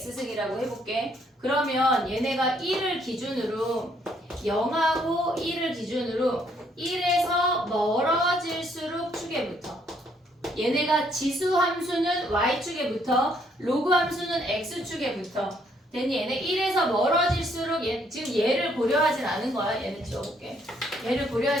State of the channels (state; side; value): normal; both; correlation 0.68